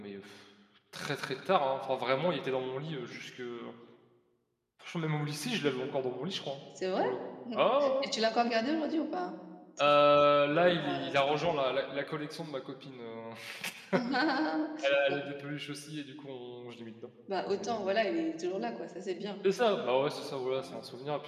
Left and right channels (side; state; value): both; identical; correlation 1.00